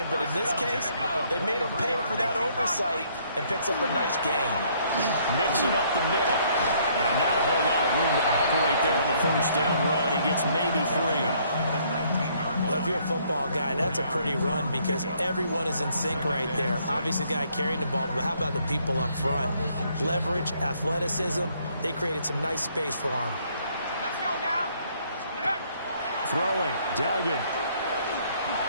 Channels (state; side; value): inverted; both; correlation -0.66